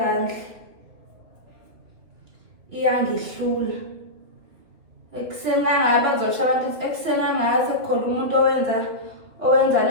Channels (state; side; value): late; left; 2.7 ms